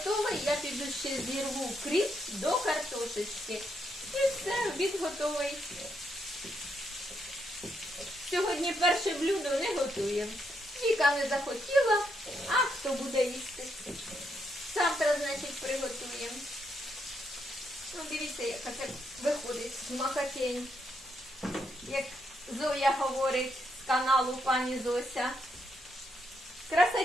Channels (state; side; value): normal; both; correlation 0.79